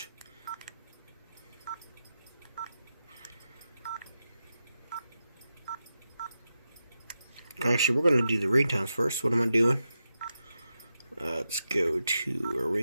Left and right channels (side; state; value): both; inverted; correlation -0.89